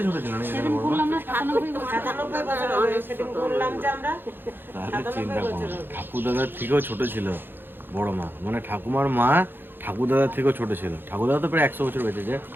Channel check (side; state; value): left; late; 0.099 ms